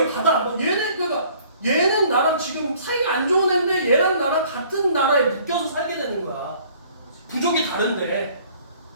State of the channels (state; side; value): inverted; both; correlation -0.56